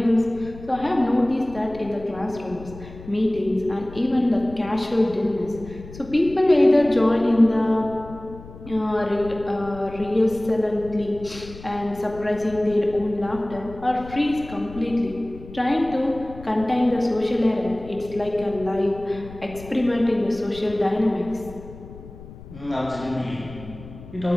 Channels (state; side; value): noise; left; rumble, 16 dB below the sound